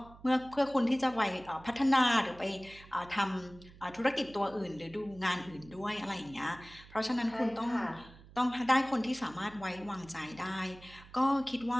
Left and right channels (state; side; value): noise; right; hum, 21 dB below the sound